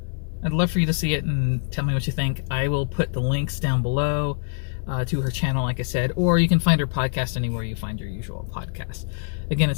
I'd love for you to see it and tell me what you think. I will put the links down below to her channel, like I said, or you can find her podcast anywhere you find your usual podcast. Again,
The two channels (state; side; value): silent; right; 59 dB below the other